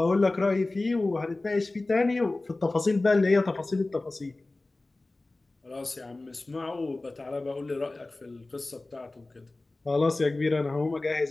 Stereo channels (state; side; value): quieter; right; 3.0 dB